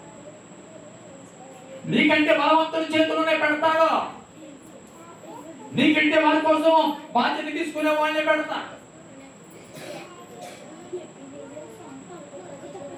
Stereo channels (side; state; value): both; identical; correlation 1.00